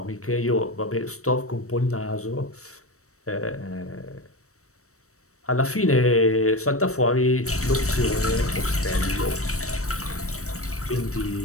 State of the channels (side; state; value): right; late; 0.65 ms